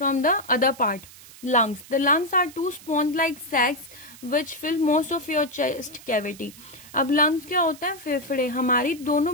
from the other part. Lungs. The lungs are two sponge-like sacs which fill most of your chest cavity. अब lungs क्या होता है? फेफड़े. हमारी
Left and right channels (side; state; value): right; noise; hiss, 20 dB below the sound